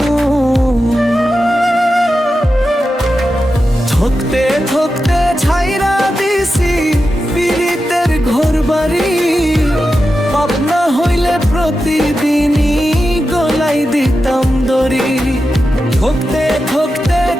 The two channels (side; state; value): both; normal; correlation 0.91